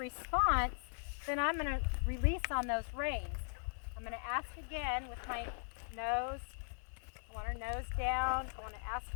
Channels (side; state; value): right; silent; digital silence